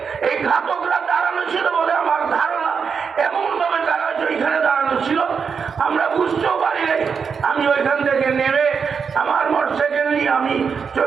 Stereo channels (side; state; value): left; quieter; 6.1 dB